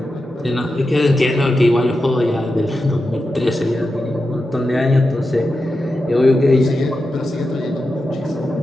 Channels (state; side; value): normal; both; correlation 0.90